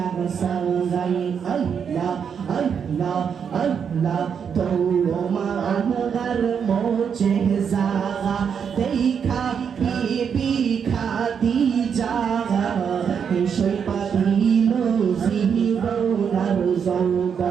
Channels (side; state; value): left; quieter; 7.1 dB